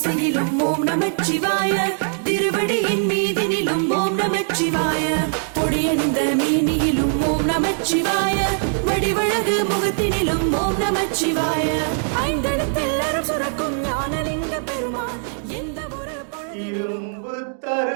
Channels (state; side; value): silent; left; digital silence